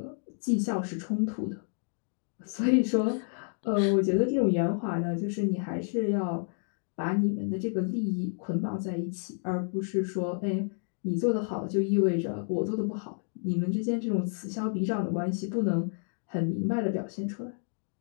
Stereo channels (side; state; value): right; silent; 58 dB below the other